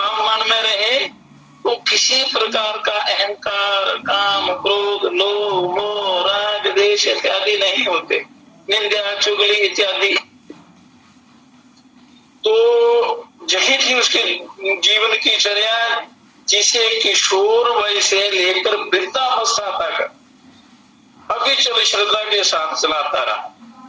मन में रहे तो किसी प्रकार का अहंकार, काम, क्रोध, लोभ, मोह, राग, द्वेष इत्यादि नहीं होते, निंदा, चुगली इत्यादि। तो यही थी उसके जीवन की चर्या, जिसे किशोर वय से लेकर वृद्धावस्था तक अविचल श्रद्धा के साथ चलाता रहा।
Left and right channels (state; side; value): identical; both; correlation 1.00